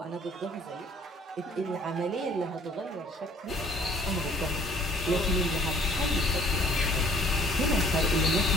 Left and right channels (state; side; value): normal; both; correlation 0.56